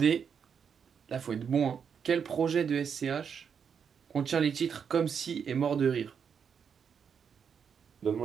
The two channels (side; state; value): left; quieter; 7.0 dB